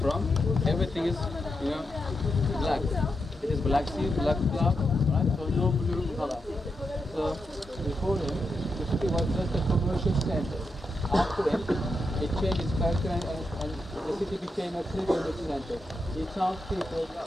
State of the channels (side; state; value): both; normal; correlation 0.85